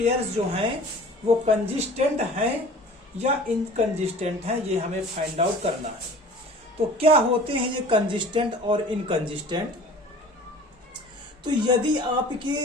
जो हैं वो कंसिस्टेंट हैं या इनकंसिस्टेंट हैं, ये हमें फाइंड आउट करना है। तो क्या होते हैं ये कंसिस्टेंट और इनकंसिस्टेंट। तो यदि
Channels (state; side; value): normal; both; correlation 0.44